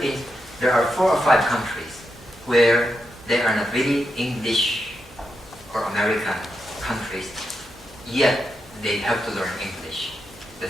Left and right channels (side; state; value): both; normal; correlation 0.85